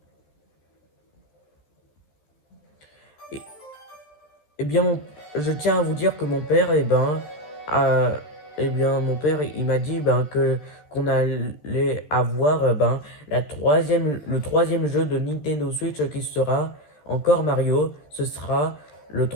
Et, eh bien, je tiens à vous dire que mon père, a- mon père, il m'a dit que qu'on allait avoir le troisième jeu de Nintendo Switch qui sera encore Mario. Ce sera le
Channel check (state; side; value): late; right; 13 ms